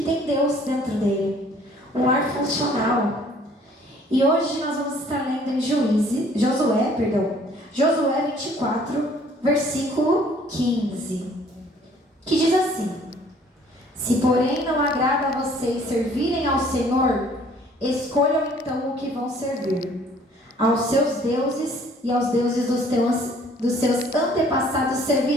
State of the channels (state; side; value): normal; both; correlation 0.57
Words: tem Deus dentro dele, um lar funcional. E hoje nós vamos estar lendo em Josué 24, versículo 15, que diz assim: se porém não agrada a vocês servirem ao Senhor, escolham então o que vão servir. Aos seus deuses e aos deuses dos seus antepassados